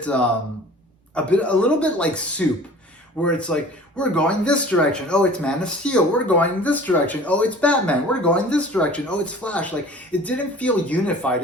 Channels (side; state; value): both; normal; correlation 0.45